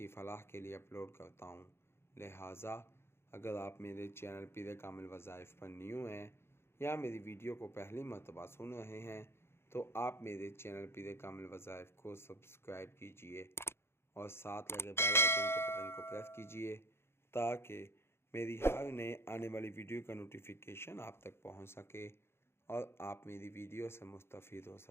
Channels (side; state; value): right; late; 0.12 ms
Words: فلاح کے لیے اپلوڈ کرتا ہوں، لہٰذا اگر آپ میرے چینل پیر کامل وظائف پر نیو ہیں یا میری ویڈیو کو پہلی مرتبہ سن رہے ہیں تو آپ میرے چینل پیر کامل وظائف کو سبسکرائب کیجئے اور ساتھ لگے بیل آئیکن کے بٹن کو پریس کیجئے تاکہ میری ہر نئے آنے والی ویڈیو کا نوٹیفیکیشن آپ تک پہنچ سکے اور آپ میری ویڈیو سے مستفید ہو